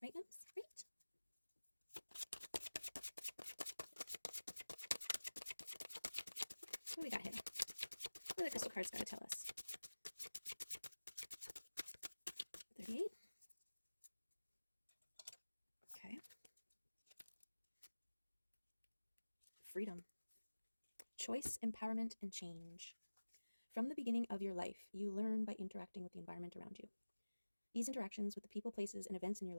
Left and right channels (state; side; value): inverted; both; correlation -1.00